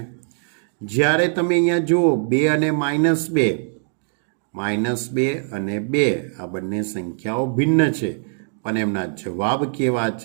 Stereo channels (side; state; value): left; silent; digital silence